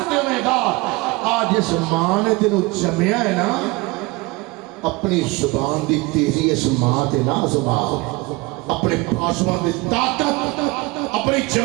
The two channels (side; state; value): left; quieter; 23.6 dB